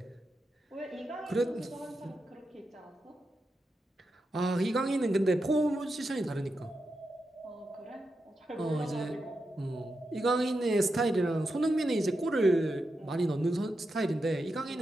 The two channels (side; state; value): both; normal; correlation 0.87